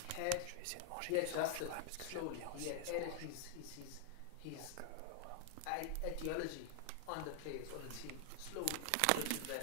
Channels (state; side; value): different; both; correlation 0.00